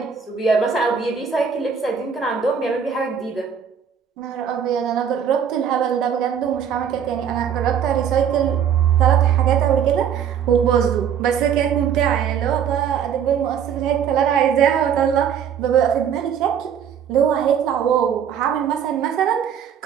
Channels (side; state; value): left; quieter; 8.1 dB